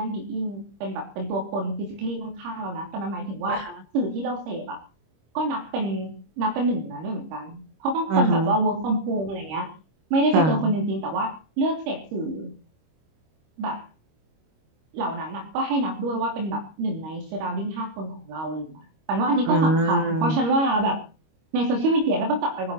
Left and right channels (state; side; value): late; left; 25 ms